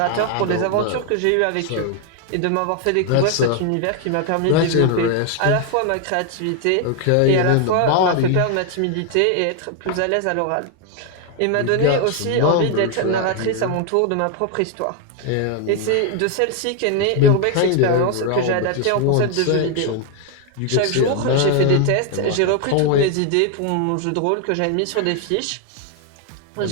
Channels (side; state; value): both; different; correlation 0.01